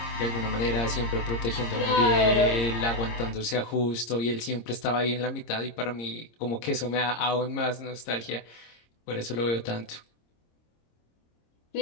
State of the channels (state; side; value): late; right; 26 ms